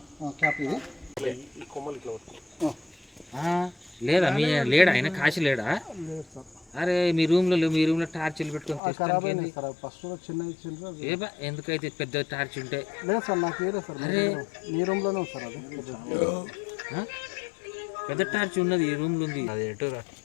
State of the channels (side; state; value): right; drops out; at 8.8 s